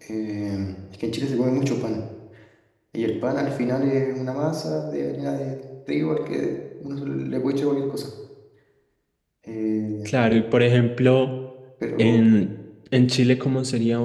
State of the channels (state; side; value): identical; both; correlation 1.00